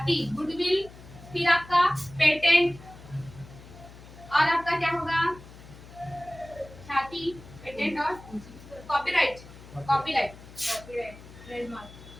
गुडविल, फिर आपका पेटेंट, और आपका क्या होगा, ख्याति, पेटेंट और कॉपीराइट, कॉपीराइट,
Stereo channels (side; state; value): left; noise; hum, 19 dB below the sound